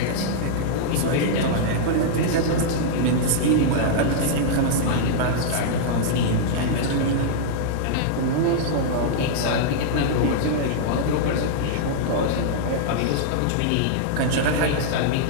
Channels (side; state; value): both; different; correlation -0.02